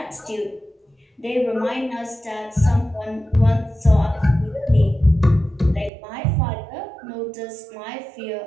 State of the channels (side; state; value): left; drops out; at 5.9 s